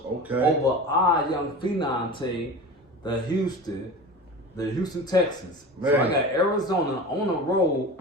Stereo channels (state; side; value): normal; both; correlation 0.32